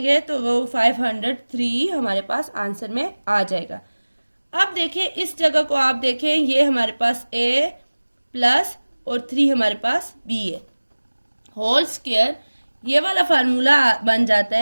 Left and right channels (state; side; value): inverted; both; correlation -1.00